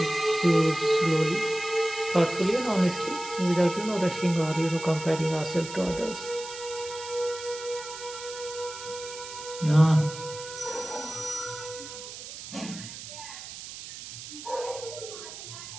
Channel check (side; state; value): right; noise; hiss, 12 dB below the sound